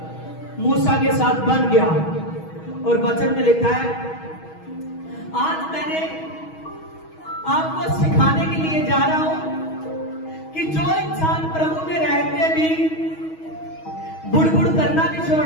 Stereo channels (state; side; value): late; right; 6.3 ms